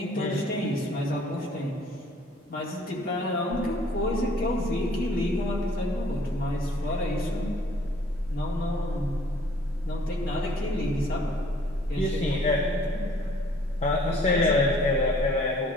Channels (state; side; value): normal; both; correlation 0.57